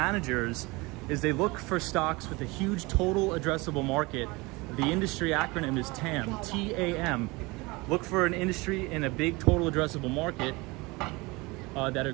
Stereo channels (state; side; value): quieter; left; 24.3 dB